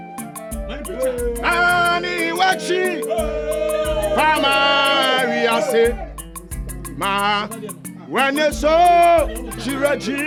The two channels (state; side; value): identical; both; correlation 1.00